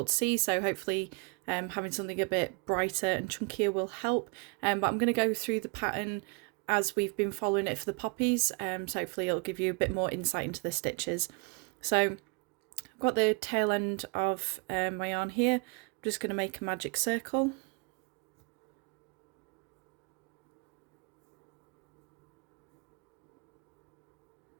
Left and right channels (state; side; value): quieter; left; 31.2 dB